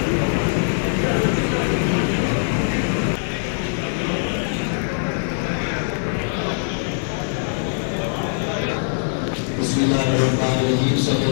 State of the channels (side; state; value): right; silent; digital silence